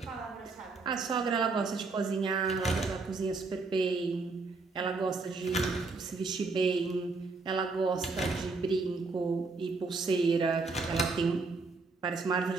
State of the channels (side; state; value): left; quieter; 4.0 dB